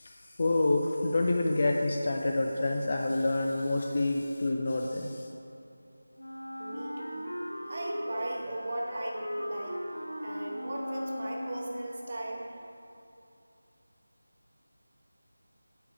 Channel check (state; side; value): inverted; both; correlation -0.96